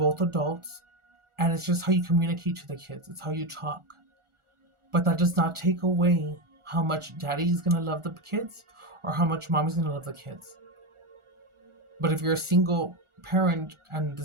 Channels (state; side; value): late; left; 1.4 ms